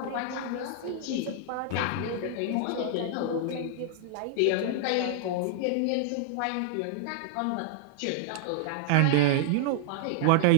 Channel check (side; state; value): both; different; correlation -0.01